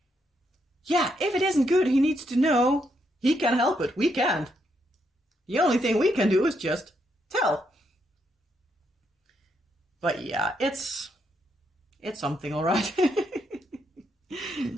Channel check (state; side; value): normal; both; correlation 0.77